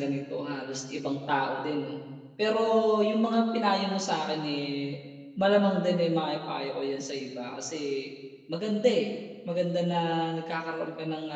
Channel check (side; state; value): both; identical; correlation 1.00